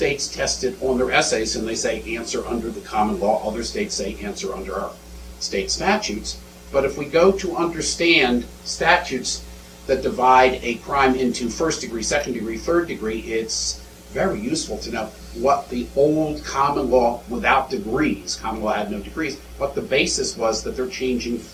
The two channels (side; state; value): both; identical; correlation 1.00